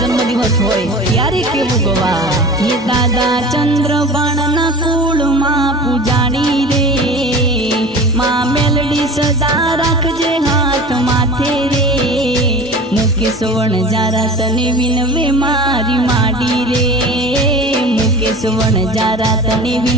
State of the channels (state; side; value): normal; both; correlation 0.36